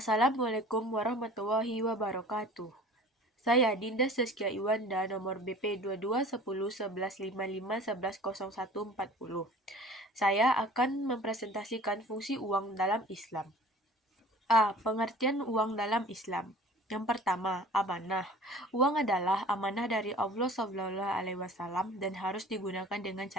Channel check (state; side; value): normal; both; correlation 0.45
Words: warahmatullahi wabarakatuh. Saya Dinda Saskia Iwanda, nomor BP 22101155110140. Saya akan mempresentasikan fungsi uang dalam Islam. A. Pengertian uang dalam Islam. Yang pertama, amanah. Uang adalah amanah dari Allah SAW dan harus digunakan dengan